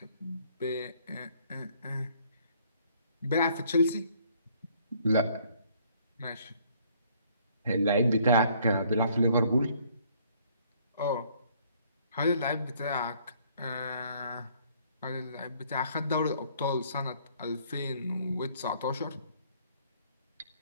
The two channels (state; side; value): inverted; both; correlation -0.62